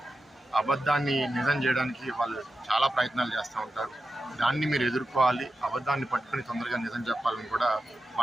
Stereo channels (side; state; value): both; normal; correlation 0.91